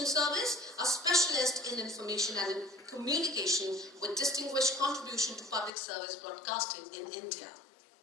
Service, a specialist in information and communication with distinguished contribution to public service broadcasting in India.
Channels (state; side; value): drops out; right; at 5.7 s